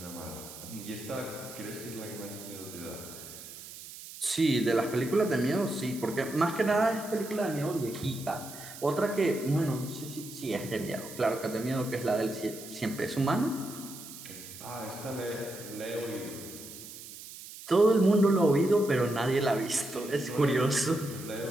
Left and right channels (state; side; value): noise; right; hiss, 14 dB below the sound